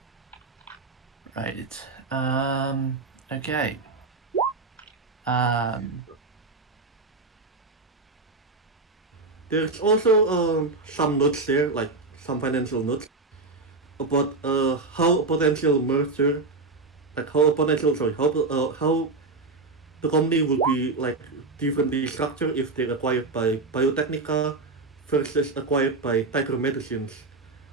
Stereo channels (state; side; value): quieter; left; 3.6 dB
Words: Right. Okay. Um, There's also some notes there, like some financial notes about how a potential merger, like how a potential sorry, how the company will be like differently structured if they're acquired by Biotechnica versus acquired by Tiger Medicines.